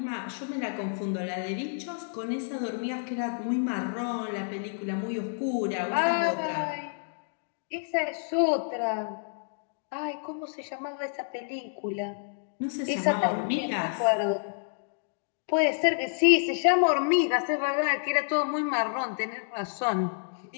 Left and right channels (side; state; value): right; silent; digital silence